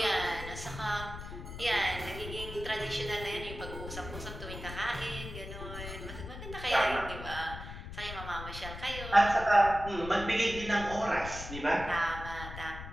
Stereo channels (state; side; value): noise; left; rumble, 10 dB below the sound